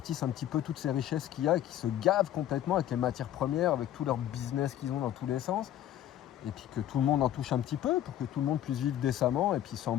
un petit peu toutes ces richesses qu'il y a et qui se gavent complètement avec les matières premières, avec tout leur business qu'ils ont dans tous les sens, et puis que tout le monde en touche un petit peu pour que tout le monde puisse vivre décemment et puis sans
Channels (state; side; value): quieter; right; 12.0 dB